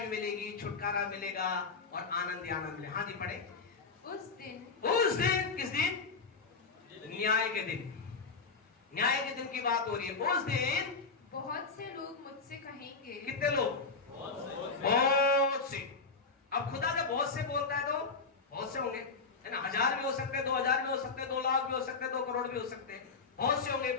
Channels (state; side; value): quieter; right; 4.6 dB